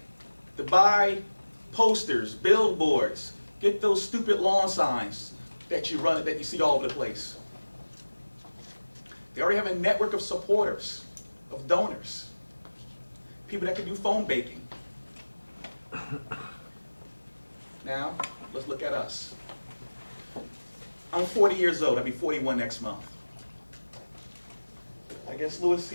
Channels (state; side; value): inverted; both; correlation -1.00